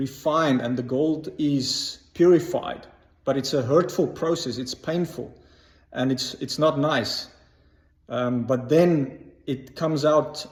and the gold is purified. But it's a hurtful process. It's painful, and it's not nice. But then it comes out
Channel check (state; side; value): identical; both; correlation 1.00